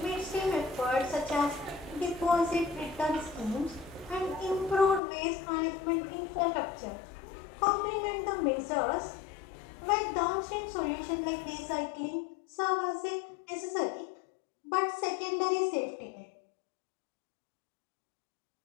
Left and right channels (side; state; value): right; drops out; at 5.0 s